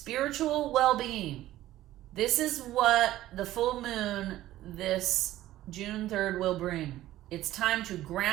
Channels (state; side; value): quieter; left; 14.6 dB